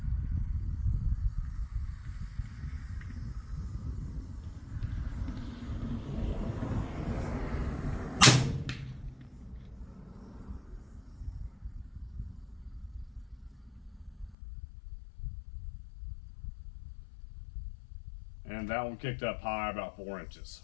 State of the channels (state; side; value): drops out; right; at 14.4 s